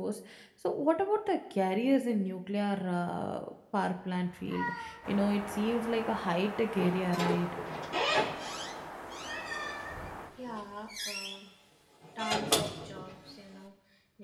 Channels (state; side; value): identical; both; correlation 1.00